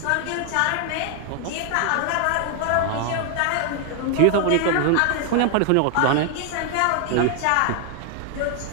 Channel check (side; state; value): both; different; correlation 0.00